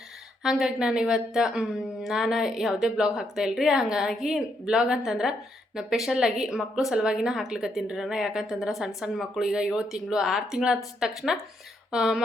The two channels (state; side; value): normal; both; correlation 0.76